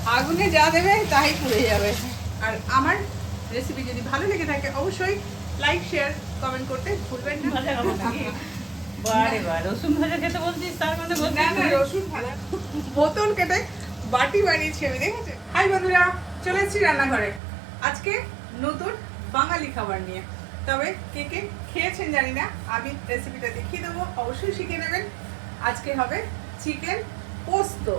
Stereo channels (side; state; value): left; drops out; at 17.4 s